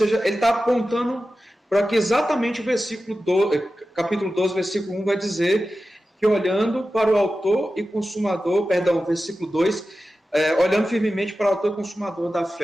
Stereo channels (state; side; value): normal; both; correlation 0.93